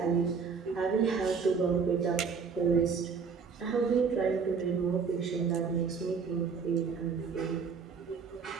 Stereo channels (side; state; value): left; quieter; 5.7 dB